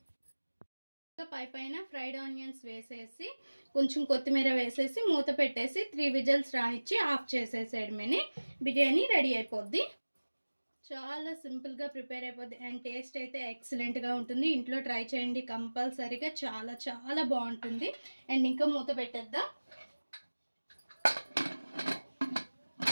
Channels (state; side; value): inverted; both; correlation -1.00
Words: పైన ఫ్రైడ్ ఆనియన్స్ వేసేసి కొంచెం కొత్తిమీర వేసేసి మూత పెట్టేసి 3 విజిల్స్ రానిచ్చి ఆఫ్ చేసేసేయడమేని బిర్యానీ రెడీ అయిపోద్ది. చాలా సింపుల్గా ప్రిపేర్ అయిపోద్ది అండ్ టేస్ట్ అయితే ఎక్సలెంట్గా ఉంటుంది. ఇంట్లో ట్రై చేయండి కంపల్సరీగా, చాలా చాలా బాగుంటుంది. అండ్ ఇంకా మూత పెట్టేద్దాం.